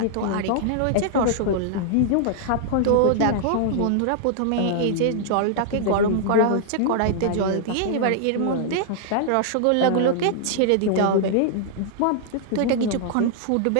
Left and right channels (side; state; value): both; different; correlation -0.01